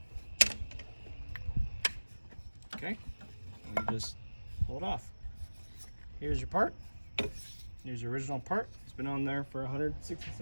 Okay, and you just pull it off. Here's your part. Here's your original part. It's been on there for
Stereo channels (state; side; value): inverted; both; correlation -1.00